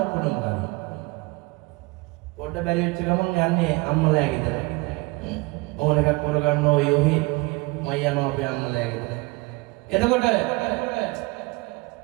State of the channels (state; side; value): quieter; left; 24.6 dB